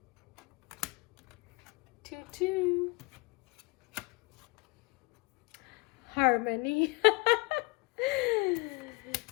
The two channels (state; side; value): quieter; right; 26.1 dB